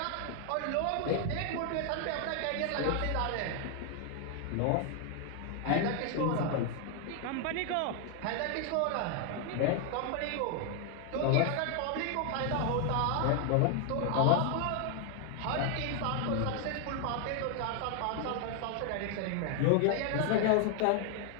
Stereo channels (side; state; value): both; different; correlation 0.00